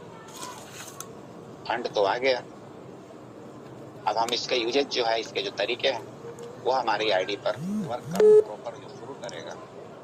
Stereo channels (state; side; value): identical; both; correlation 1.00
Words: फंड तो आ गया। अब हम इसका यूजेज जो है, इसके जो तरीके हैं वो हमारी आईडी पर वर्क करना प्रॉपर जो शुरू करेगा